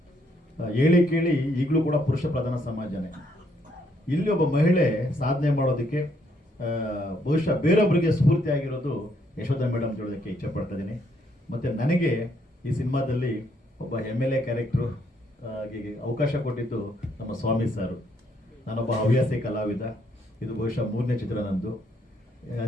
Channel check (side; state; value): both; normal; correlation 0.71